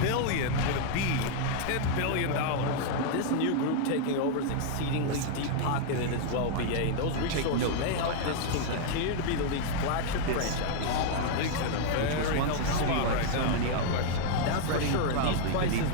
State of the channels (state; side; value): different; both; correlation 0.00